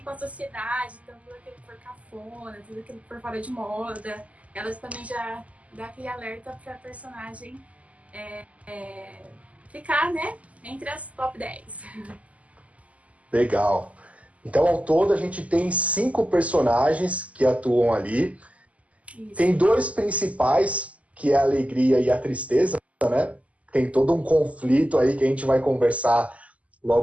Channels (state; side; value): late; left; 0.069 ms